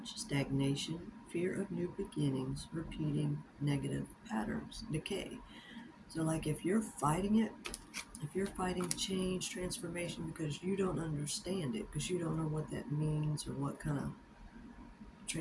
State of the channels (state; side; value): identical; both; correlation 1.00